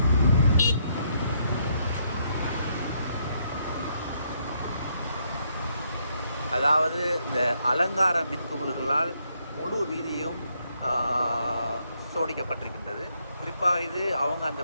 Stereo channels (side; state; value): both; inverted; correlation -0.74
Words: அதாவது இந்த அலங்கார மின்குமிழ்களால் முழு வீதியும் சோடிக்கப்பட்டிருக்கின்றது. குறிப்பாக இது அவங்க அந்த